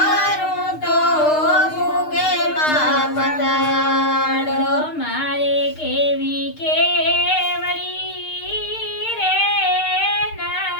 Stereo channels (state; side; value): late; right; 6.5 ms